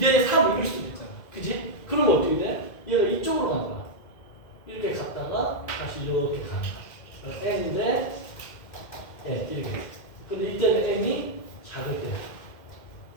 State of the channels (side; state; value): right; late; 2.1 ms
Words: 3 이럴 수도 있잖아. 그지? 그러면 어떻게 돼? 얘가 이쪽으로 가는 거야. 이렇게 갔다가 다시 이렇게 가는 거야. N 대 N 이렇게. 근데 이때는 M이 작을 때.